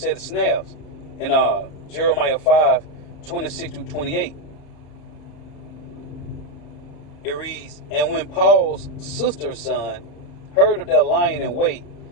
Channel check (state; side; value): late; right; 33 ms